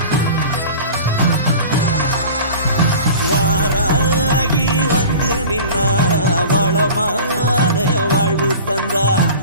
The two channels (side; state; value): both; inverted; correlation -0.39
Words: வாராகி வந்து நின்னா வளமான வாழ்வு தந்தா